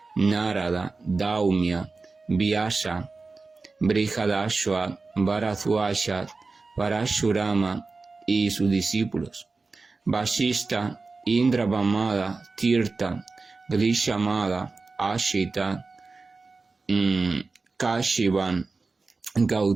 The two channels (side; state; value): left; quieter; 4.0 dB